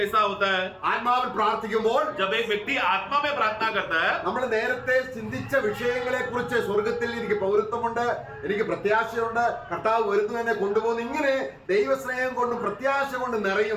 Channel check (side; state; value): both; identical; correlation 1.00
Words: होता है? ആത്മാവിൽ പ്രാർത്ഥിക്കുമ്പോൾ जब एक व्यक्ति आत्मा में प्रार्थना करता है, നമ്മൾ നേരത്തെ ചിന്തിച്ച വിഷയങ്ങളെ കുറിച്ച് സ്വർഗത്തിൽ എനിക്ക് പൗരത്വമുണ്ട്, എനിക്ക് പ്രത്യാശയുണ്ട്, കർത്താവ് വരുന്നു എന്നെ കൊണ്ടുപോകുന്നു, ഇങ്ങനെ ദൈവസ്നേഹം കൊണ്ടും പ്രത്യാശ കൊണ്ടും